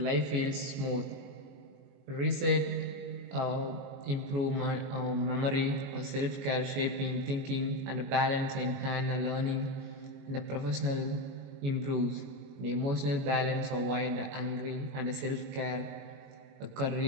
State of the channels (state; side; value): late; left; 21 ms